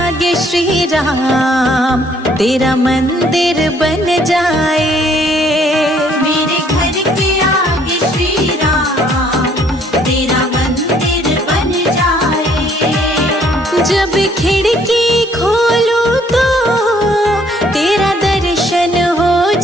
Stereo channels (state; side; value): normal; both; correlation 0.63